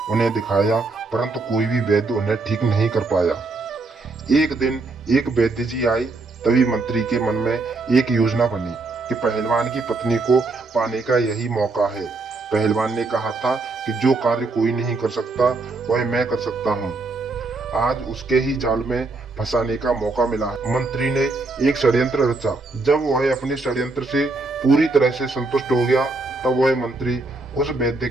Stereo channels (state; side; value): quieter; left; 3.5 dB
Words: उन्हें दिखाया, परंतु कोई भी वैद्य उन्हें ठीक नहीं कर पाया। एक दिन एक वैद्य जी आए। तभी मंत्री के मन में एक योजना बनी कि पहलवान की पत्नी को पाने का यही मौका है। पहलवान ने कहा था कि जो कार्य कोई नहीं कर सकता वह मैं कर सकता हूँ। आज उसके ही जाल में फंसाने का मौका मिला है। मंत्री ने एक षड्यंत्र रचा। जब वह अपने षड्यंत्र से पूरी तरह से संतुष्ट हो गया, तब वह मंत्री उस वैद्य